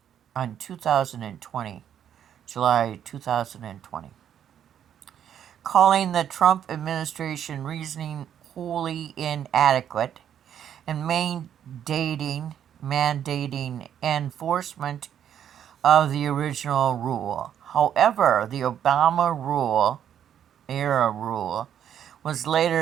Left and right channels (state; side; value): quieter; left; 9.6 dB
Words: on 2020, July 2020, calling the Trump administration reasoning wholly inadequate and mandating enforcement of the original rule. However, the Obama-era rule was